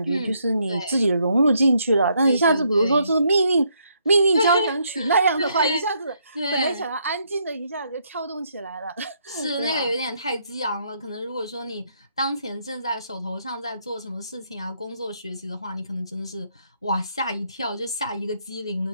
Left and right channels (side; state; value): both; inverted; correlation -0.73